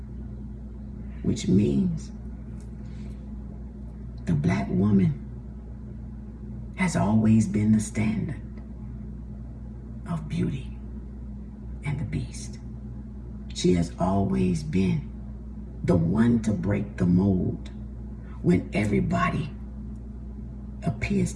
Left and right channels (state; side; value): identical; both; correlation 1.00